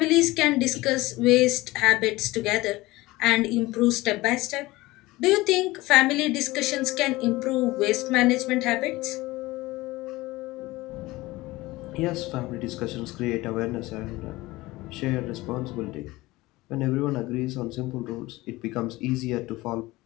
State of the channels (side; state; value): right; quieter; 19.7 dB